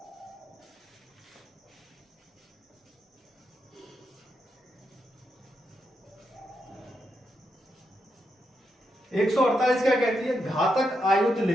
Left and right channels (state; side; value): normal; both; correlation 0.83